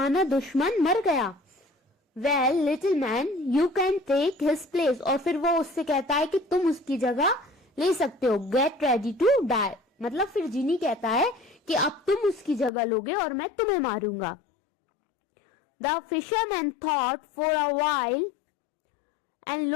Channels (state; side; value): drops out; right; at 12.7 s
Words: दुश्मन मर गया। Well little man you can take his place. और फिर वो उससे कहता है कि तुम उसकी जगह ले सकते हो। Get ready to die. मतलब फिर जिनी कहता है कि अब तुम उसकी जगह लोगे और मैं तुम्हें मारूंगा। The fisherman thought for a while and